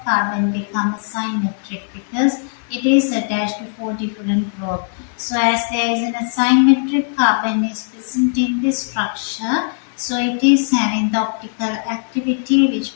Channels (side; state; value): right; silent; 61 dB below the other